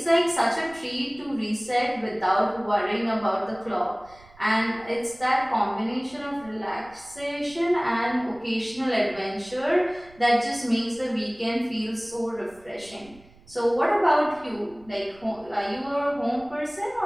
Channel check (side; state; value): right; noise; rumble, 25 dB below the sound